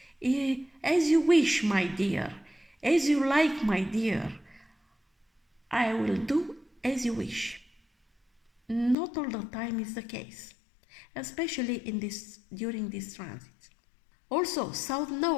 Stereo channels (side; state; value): right; drops out; at 9.0 s